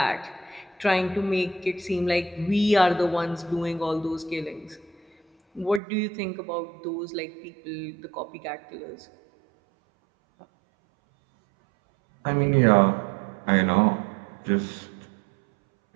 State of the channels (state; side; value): drops out; left; at 5.8 s